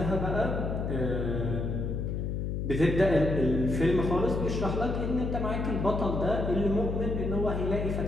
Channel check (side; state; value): left; noise; hum, 2 dB below the sound